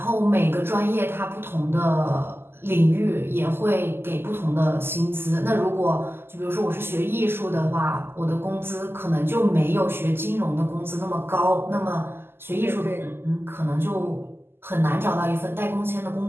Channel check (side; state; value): left; late; 0.11 ms